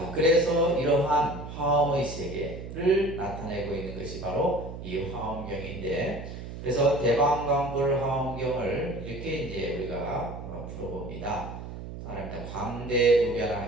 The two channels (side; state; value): right; noise; hum, 10 dB below the sound